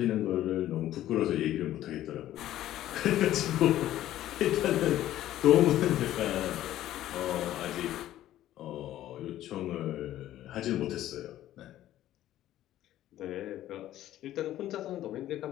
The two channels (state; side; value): quieter; right; 13.3 dB